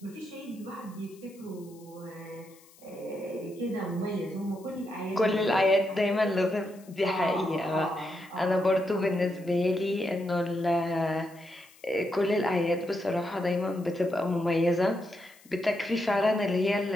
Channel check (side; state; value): left; noise; hiss, 26 dB below the sound